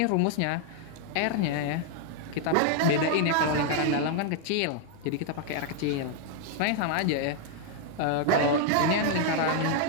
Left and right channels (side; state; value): both; different; correlation 0.00